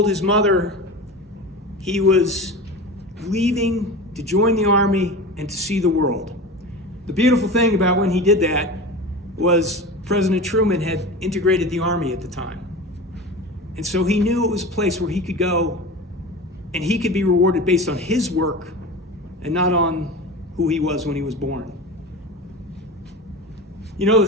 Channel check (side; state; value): both; normal; correlation 0.30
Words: his mother he was leaving to join the Army and to see the world. The beautiful thing about when he did that was President Truman had integrated the Army at the time. And so he knew it was a place where he could go and he could be rewarded based on his work and not on who he was when he was born. You know, the